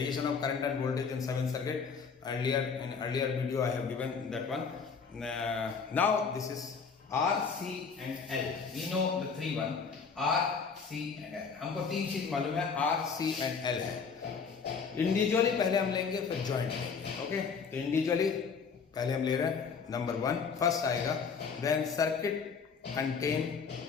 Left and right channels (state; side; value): quieter; right; 5.7 dB